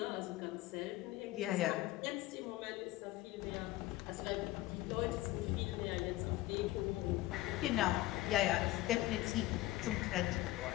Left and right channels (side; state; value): right; quieter; 16.9 dB